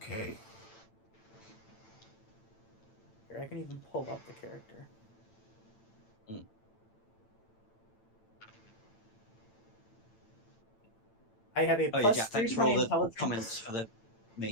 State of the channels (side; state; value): right; late; 8.9 ms